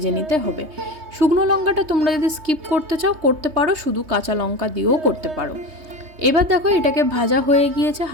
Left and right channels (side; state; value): left; late; 3.2 ms